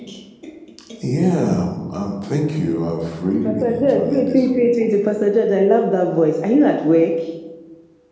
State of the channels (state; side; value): identical; both; correlation 1.00